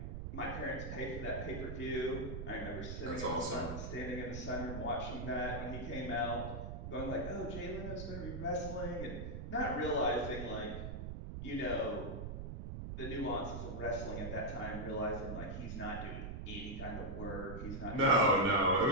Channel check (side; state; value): right; noise; rumble, 6 dB below the sound